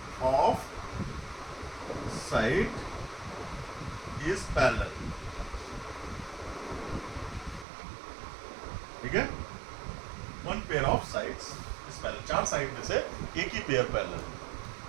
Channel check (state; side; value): drops out; left; at 7.7 s